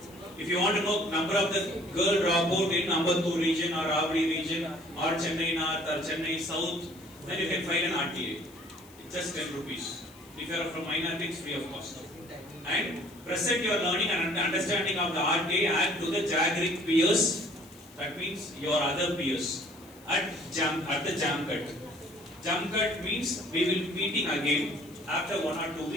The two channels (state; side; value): noise; left; hiss, 24 dB below the sound